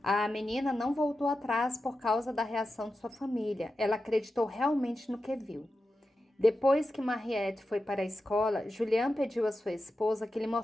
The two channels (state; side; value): normal; both; correlation 0.91